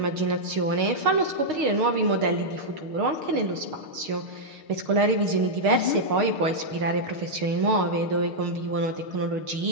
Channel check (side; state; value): left; late; 6.5 ms